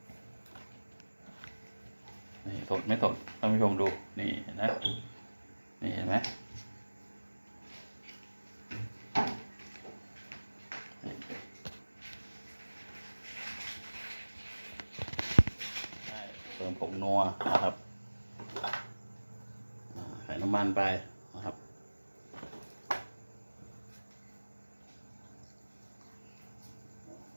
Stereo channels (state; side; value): inverted; both; correlation -1.00